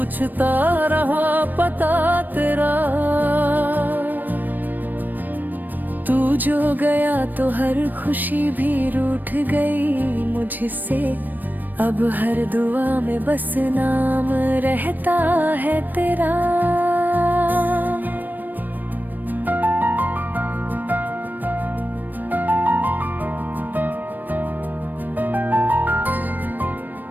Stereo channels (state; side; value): late; left; 0.089 ms